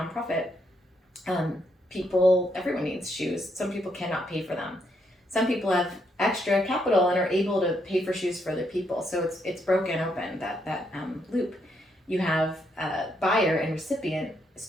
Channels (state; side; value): normal; both; correlation 0.76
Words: Everyone needs shoes. Some people cannot pay for them. Some people have extra capital and are able to pay for shoes for other people. So it's broken open, that loop. You have buyer and recipient as